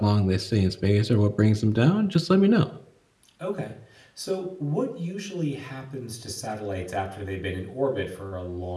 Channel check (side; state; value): both; identical; correlation 1.00